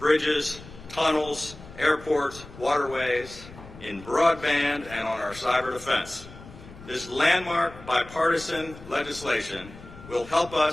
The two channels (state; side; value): noise; left; rumble, 17 dB below the sound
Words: tunnels, airports, waterways, in broadband, and on our cyber defense. This landmark bipartisan legislation will help